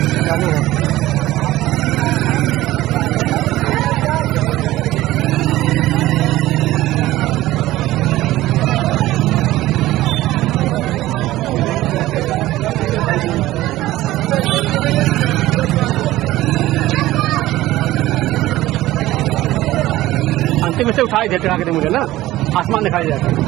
अंतिम से उठाई देते आगे मुझे ना आसमान दिखाई जाता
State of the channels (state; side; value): quieter; left; 16.3 dB